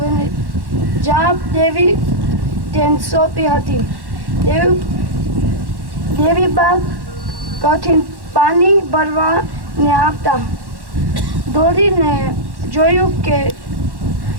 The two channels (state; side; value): late; left; 1.1 ms